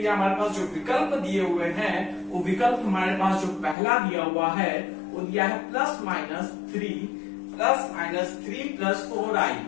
हमारे पास जो विकल्प दिए हुए हैं, वो विकल्प हमारे पास जो पहला दिया हुआ है वो दिया है +-3 + 4i।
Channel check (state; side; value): drops out; right; at 3.8 s